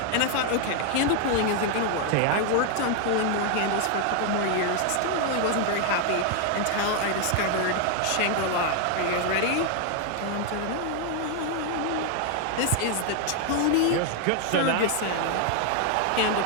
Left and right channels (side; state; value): both; different; correlation 0.00